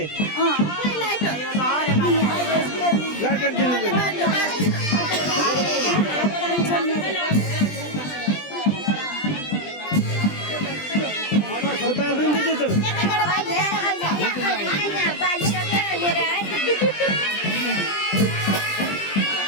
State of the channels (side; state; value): right; late; 20 ms